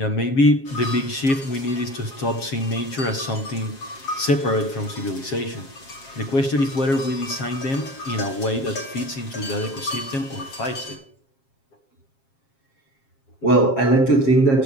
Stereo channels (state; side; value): late; right; 7.4 ms